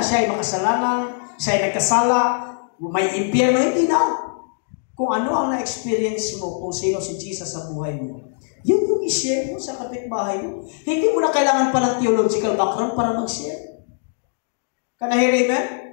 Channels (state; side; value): silent; right; digital silence